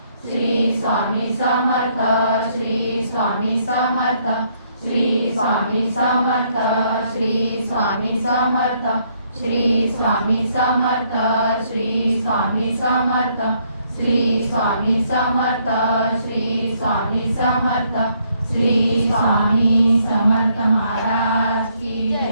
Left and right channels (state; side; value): inverted; both; correlation -0.70